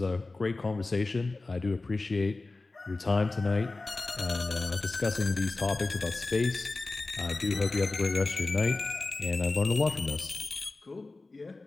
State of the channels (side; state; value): right; quieter; 3.4 dB